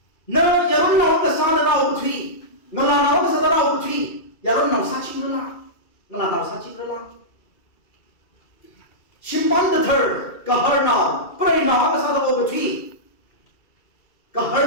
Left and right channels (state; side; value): late; right; 2.3 ms